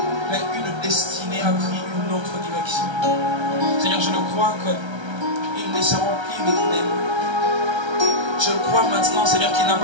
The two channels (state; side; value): late; left; 1.3 ms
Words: Mais une destinée a pris une autre direction. Seigneur, je le crois qu'ils ne seront plus de même. Je le crois maintenant, Seigneur, qu'ils